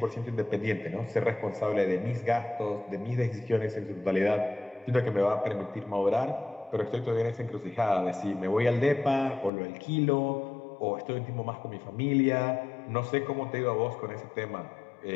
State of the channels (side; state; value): right; drops out; at 9.5 s